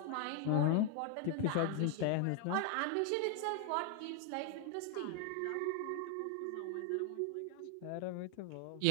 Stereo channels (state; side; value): different; both; correlation 0.00